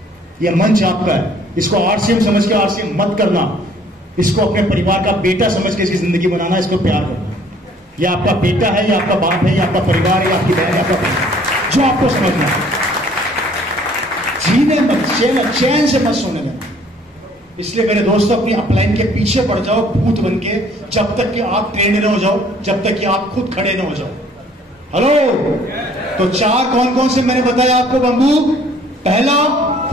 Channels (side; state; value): both; normal; correlation 0.58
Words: ये मंच आपका है। इसको आरसीएम समझ के आरसीएम मत करना, इसको अपने परिवार का बेटा समझ के इसकी जिंदगी बनाना, इसको प्यार करना। ये आपका बेटा है, ये आपका बाप है, ये आपका परिवार है, आपकी बहन है, आपका भाई, जो आपको समझना है। जीने मत, चैन से मत सोने देना। इसलिए मेरे दोस्तों, अपनी अपलाइन के पीछे पड़ जाओ भूत बन के, जब तक कि आप ट्रेंड न हो जाओ, जब तक कि आप खुद खड़े न हो जाओ। हेलो, तो चार कौन कौन से मैंने बताया आपको बंबू? पहला,